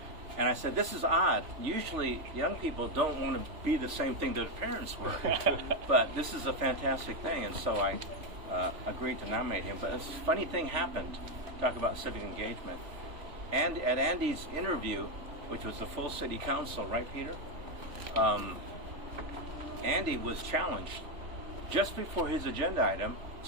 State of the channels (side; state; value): left; late; 3.3 ms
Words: And I said, this is odd. Usually young people don't want to be the same thing that their parents were. But this is a fantastic thing. And so I agreed to nominate him. But a funny thing happened. Talk about civic engagement. And at Andy's interview, which was the full city council, right, Peter? Andy was challenged. Just before his agenda item,